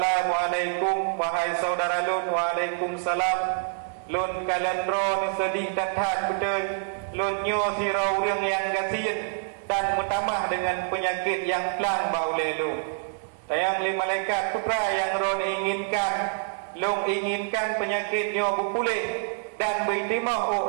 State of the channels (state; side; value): silent; left; digital silence